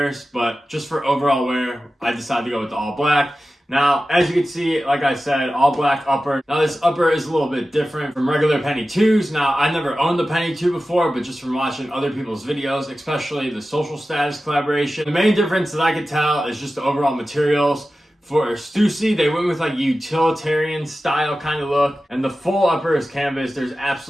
But just for overall wear, I decided to go with the all black. Now, as you can see, like I said, all black upper. Now, this upper is a little bit different from regular Penny 2s. Now, I never owned the Penny 2 before, but just from watching other people's videos, especially the Social Status collaboration, the main difference that I could tell is just the overall materials. For Stussy, they went with like utilitarian style kind of look, and the full upper is canvas. There's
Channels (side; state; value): both; normal; correlation 0.94